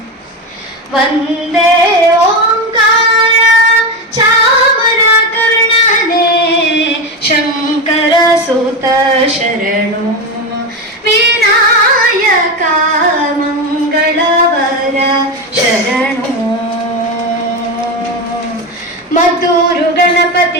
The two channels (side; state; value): both; normal; correlation 0.16